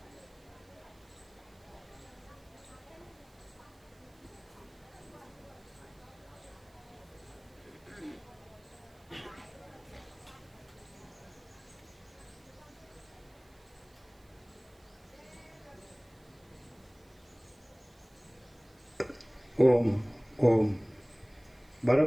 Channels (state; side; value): noise; right; hiss, 30 dB below the sound